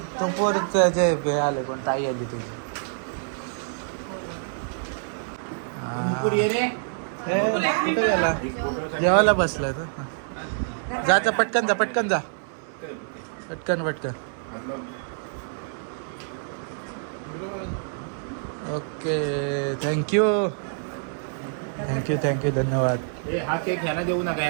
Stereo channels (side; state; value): left; silent; digital silence